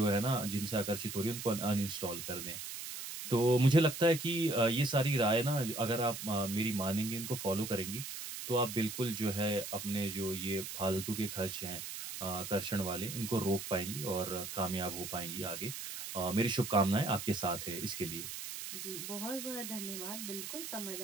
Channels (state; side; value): noise; right; hiss, 7 dB below the sound